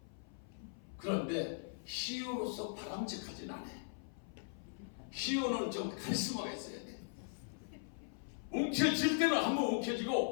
그런데 희우로서 바람직하진 않아. 희우는 좀 카리스마가 있어야 돼. 움켜질 때는 한번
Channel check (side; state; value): right; silent; 51 dB below the other